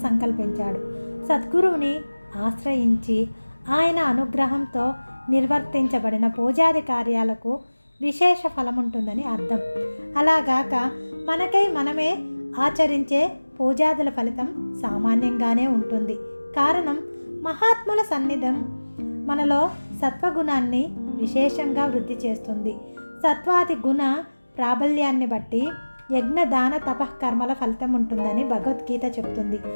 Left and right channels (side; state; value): both; inverted; correlation -1.00